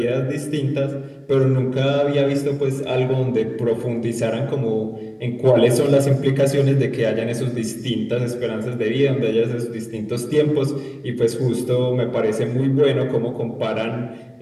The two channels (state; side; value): identical; both; correlation 1.00